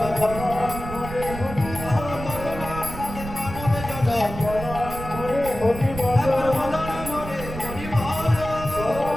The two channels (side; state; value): right; noise; rumble, 9 dB below the sound